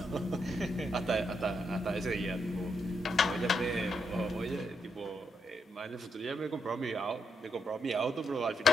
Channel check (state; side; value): normal; both; correlation 0.80